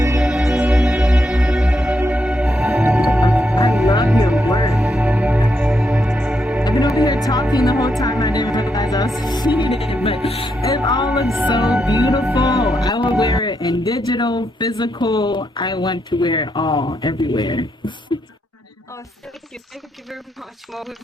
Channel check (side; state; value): both; normal; correlation 0.80